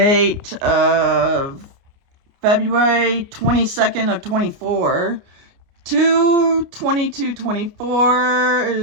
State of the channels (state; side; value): late; left; 29 ms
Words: of February 22nd of 24. 2/22/24